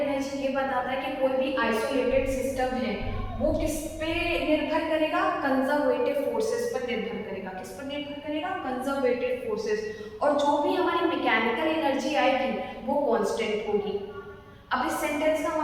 ये बताता है कि कोई भी आइसोलेटेड सिस्टम है, वो किस पे निर्भर करेगा, कंजर्वेटिव फोर्सेस पर निर्भर करेगा। किस पर निर्भर करेगा, कंजर्वेटिव फोर्सेस। और जो भी हमारी मैकेनिकल एनर्जी आएगी, वो कांस्टेंट होगी। अब इस सेंटेंस का हम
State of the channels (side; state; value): both; identical; correlation 1.00